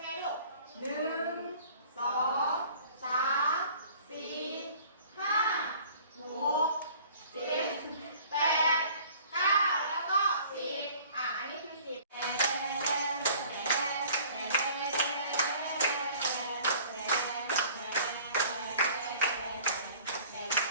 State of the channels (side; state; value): both; inverted; correlation -0.51